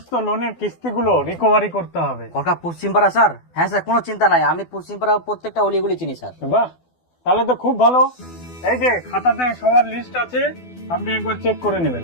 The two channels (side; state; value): right; late; 12 ms